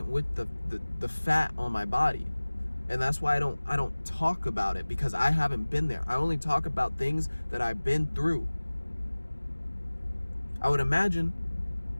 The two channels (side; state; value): both; inverted; correlation -1.00